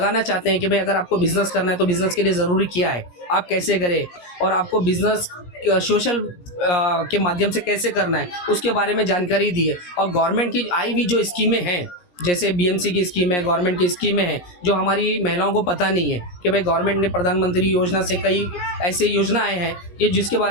चाहते हैं कि भाई अगर आपको बिज़नेस करना है तो बिज़नेस के लिए ज़रूरी क्या है, आप कैसे करें और आपको बिज़नेस सोशल के माध्यम से कैसे करना है उसके बारे में जानकारी दी है। और गवर्नमेंट की आई हुई जो स्कीमें हैं, जैसे बीएमसी की स्कीम है, गवर्नमेंट की स्कीमें हैं जो हमारी महिलाओं को पता नहीं है कि भाई गवर्नमेंट ने प्रधानमंत्री योजना से कई ऐसे योजनाएं हैं ये जिसके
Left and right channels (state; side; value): late; right; 17 ms